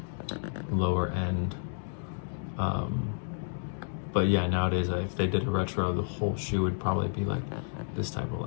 lower end. But yeah, nowadays if they did a retro, the whole shoe would probably be like this type of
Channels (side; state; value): right; silent; digital silence